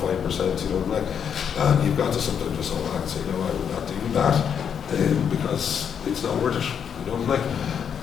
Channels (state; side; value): quieter; right; 7.8 dB